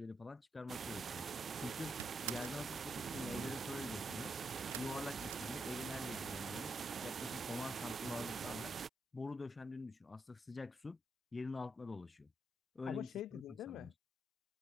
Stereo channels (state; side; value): normal; both; correlation 0.81